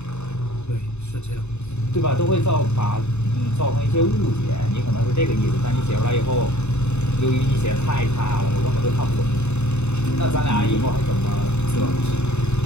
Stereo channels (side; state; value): right; late; 0.82 ms